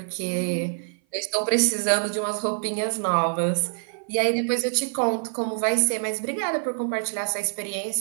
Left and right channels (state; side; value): silent; left; 57 dB below the other